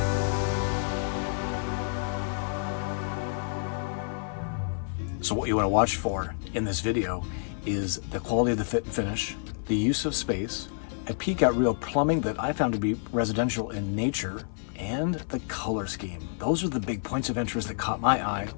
So what you want to watch for in this video is the quality of the fit and finish, the use of space, a peek at real plumbing that I found to be residential in nature, and the color scheme. Those are the big points of interest that caught my eye.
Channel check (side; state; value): right; silent; 55 dB below the other